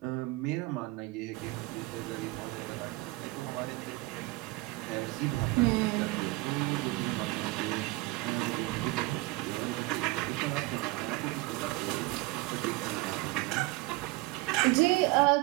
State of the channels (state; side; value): quieter; left; 21.7 dB